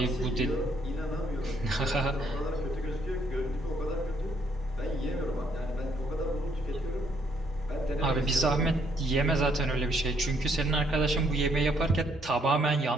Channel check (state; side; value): normal; both; correlation 0.70